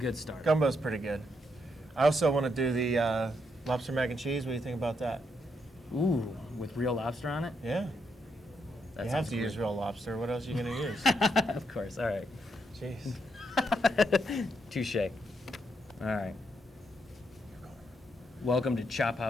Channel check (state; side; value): normal; both; correlation 0.78